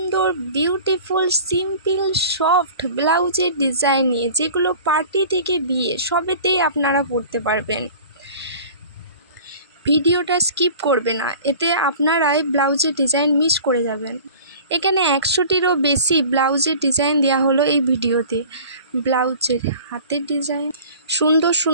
বিউটিফুল সিম্পল সফট ব্লাউজের ডিজাইন নিয়ে, যেগুলো পার্টি থেকে বিয়ে সবেতেই আপনারা পরতে পারবেন। ভিডিওটা স্কিপ করবে না, এতে আপনারাই ব্লাউজের ডিজাইন মিস করে যাবেন। এখানে 100টিরও বেশি ব্লাউজের ডিজাইন দেওয়া হলো এই ভিডিওতে। ব্লাউজের হাতের ডিজাইন, সুন্দর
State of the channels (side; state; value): both; inverted; correlation -0.43